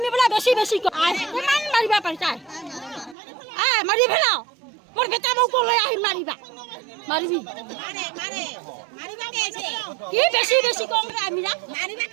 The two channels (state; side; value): drops out; left; at 3.2 s